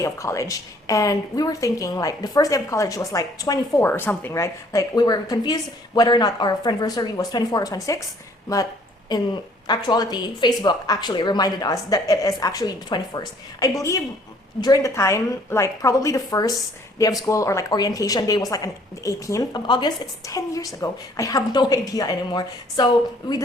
of college, and we were thinking like the first day of college was like 24 or something, right? Like we were confused whether or not our friendversary was 24 or 26, but in actuality, Facebook actually reminded us that it is actually the 21st. I believe during the time, like probably the first day of school or like orientation day was like on the 18th of August. It's 10 years ago. I have no idea anymore. So we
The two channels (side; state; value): both; normal; correlation 0.60